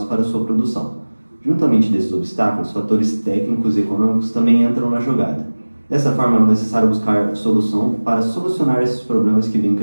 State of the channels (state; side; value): inverted; both; correlation -1.00